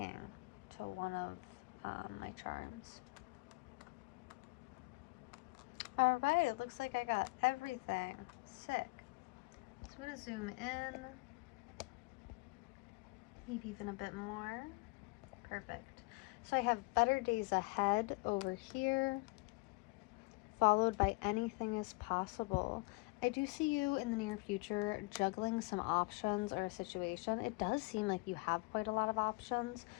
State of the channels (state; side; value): quieter; right; 27.2 dB